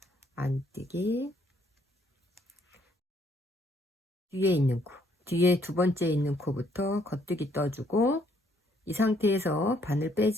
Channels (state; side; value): normal; both; correlation 0.68